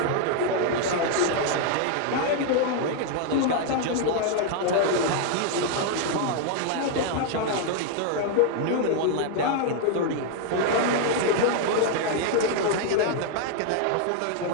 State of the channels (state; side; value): different; both; correlation 0.00